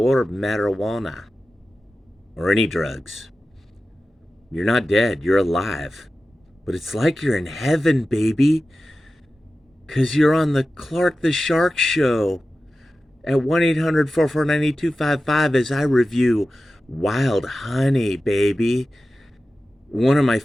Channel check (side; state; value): both; normal; correlation 0.94